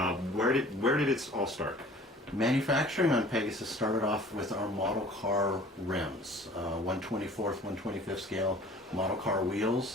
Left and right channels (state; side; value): normal; both; correlation 0.48